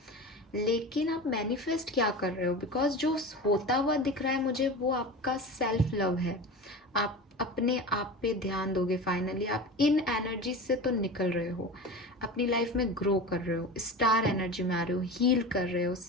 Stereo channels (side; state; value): both; normal; correlation 0.30